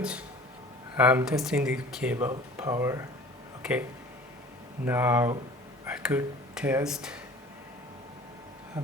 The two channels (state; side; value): normal; both; correlation 0.45